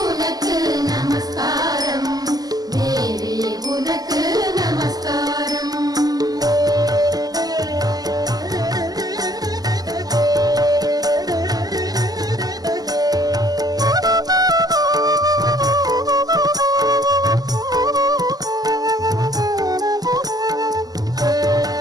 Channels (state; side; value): late; left; 0.18 ms